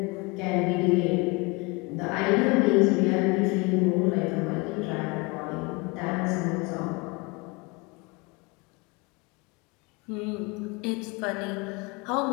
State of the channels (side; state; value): right; quieter; 26.8 dB